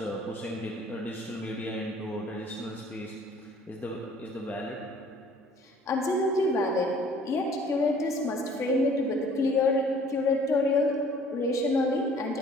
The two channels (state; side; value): normal; both; correlation 0.55